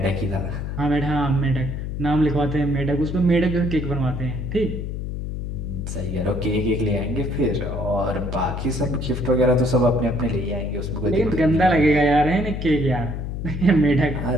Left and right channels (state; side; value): noise; left; hum, 5 dB below the sound